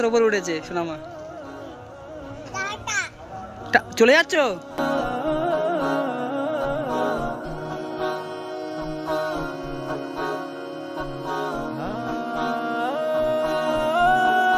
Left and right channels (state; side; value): identical; both; correlation 1.00